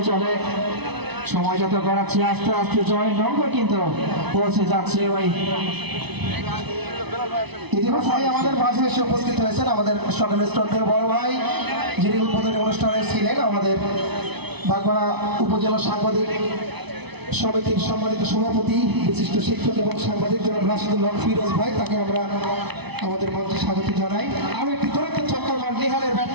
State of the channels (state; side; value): late; left; 0.99 ms